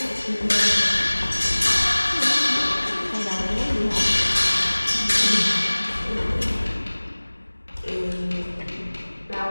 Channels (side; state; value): both; inverted; correlation -1.00